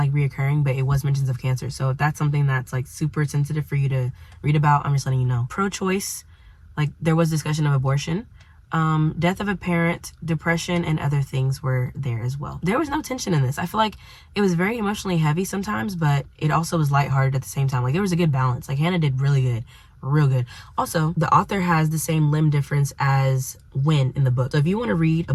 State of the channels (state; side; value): identical; both; correlation 1.00